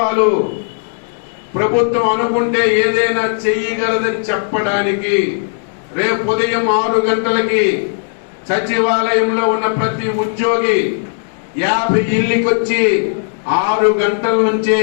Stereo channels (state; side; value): silent; right; digital silence